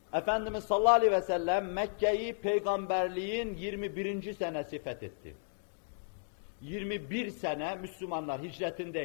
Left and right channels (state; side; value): silent; right; digital silence